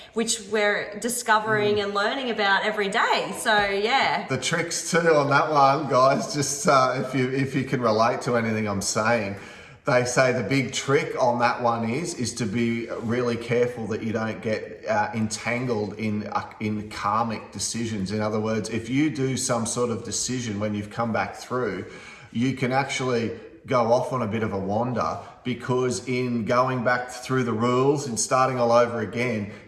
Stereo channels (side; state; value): both; identical; correlation 1.00